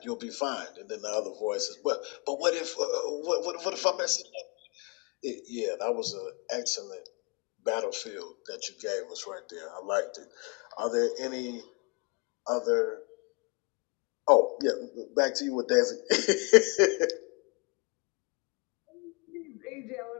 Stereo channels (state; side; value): quieter; right; 30.7 dB